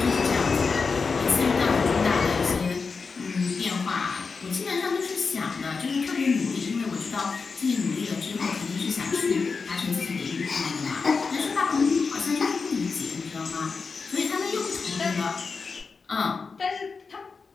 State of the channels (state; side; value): quieter; right; 4.8 dB